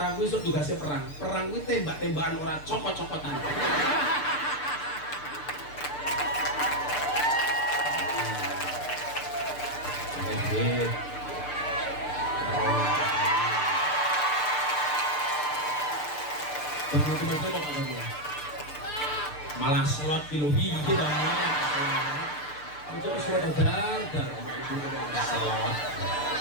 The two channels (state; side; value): late; right; 6.7 ms